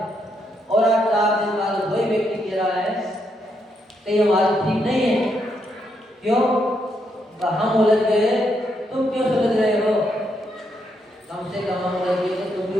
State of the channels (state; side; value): normal; both; correlation 0.78